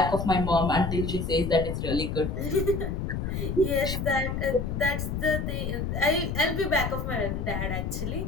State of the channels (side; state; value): left; noise; rumble, 2 dB below the sound